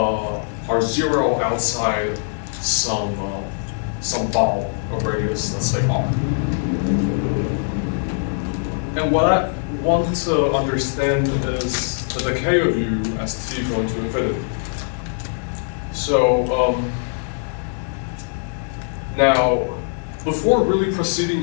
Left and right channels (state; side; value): silent; right; digital silence